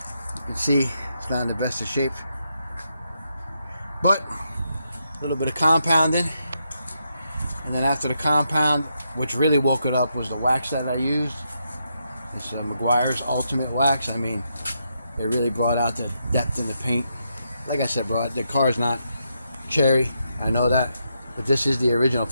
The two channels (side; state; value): both; inverted; correlation -0.81